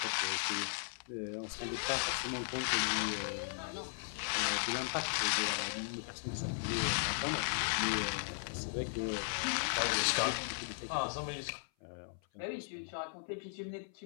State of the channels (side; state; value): right; silent; 53 dB below the other